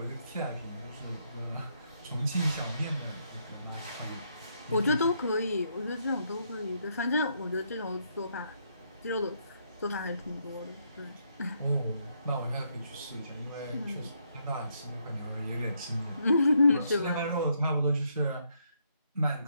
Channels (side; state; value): both; inverted; correlation -0.75